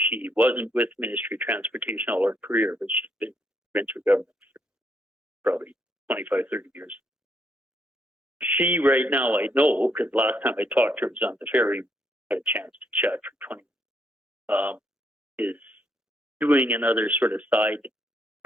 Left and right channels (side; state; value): both; normal; correlation 0.74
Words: wasn't with Ministry of Transportation all her career, but she's been provincial government for probably 25, 30 years. She right now, I know, because last time I talked to her was on the ferry, had a chance to chat for 20 is doing another sort of side